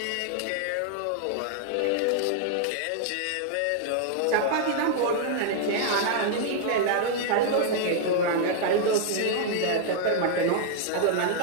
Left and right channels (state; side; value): different; both; correlation -0.01